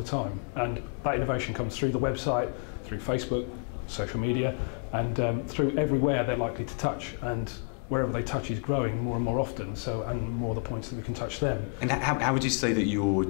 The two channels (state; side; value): quieter; right; 36.8 dB